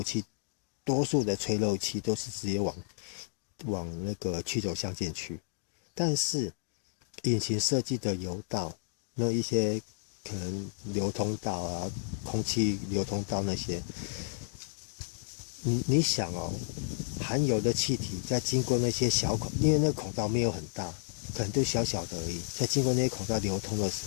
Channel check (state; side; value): silent; right; digital silence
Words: 气，多数的吹漏气都是直接往那个曲轴箱进去。但是引擎设计的油道，那一些可能流通道啊、空气流通道那些，你想哦，含油的气体在经过那些小孔，因为那个孔道没有很大，可能就小小的而已，在经过那些孔道流通的时